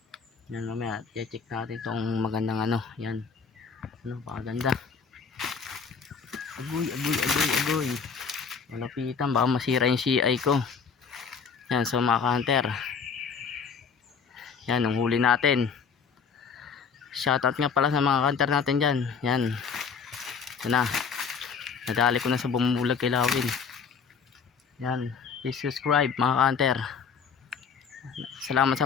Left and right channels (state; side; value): quieter; right; 5.9 dB